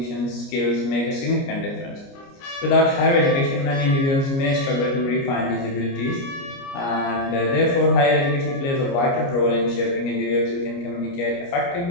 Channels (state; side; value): late; right; 29 ms